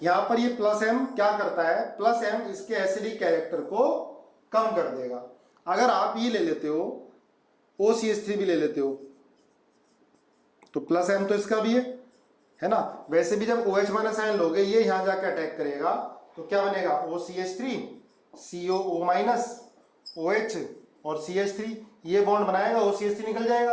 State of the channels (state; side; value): identical; both; correlation 1.00